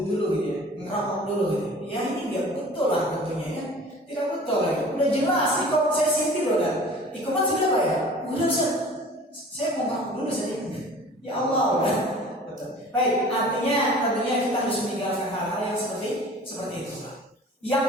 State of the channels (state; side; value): normal; both; correlation 0.44